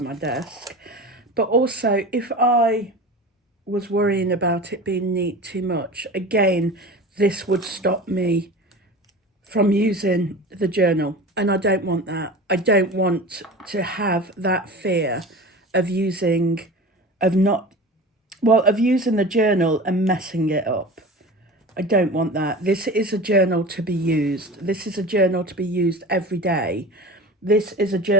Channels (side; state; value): both; normal; correlation 0.34